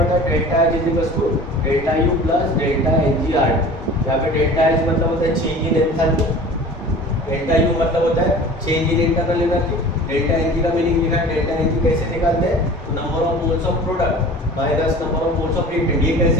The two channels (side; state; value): both; normal; correlation 0.41